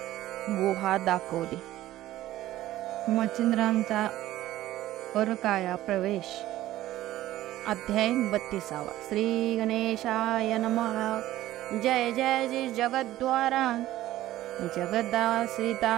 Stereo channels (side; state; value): left; quieter; 14.9 dB